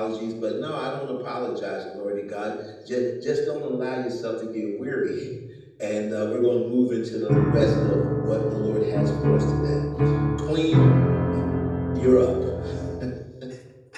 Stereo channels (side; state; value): both; identical; correlation 1.00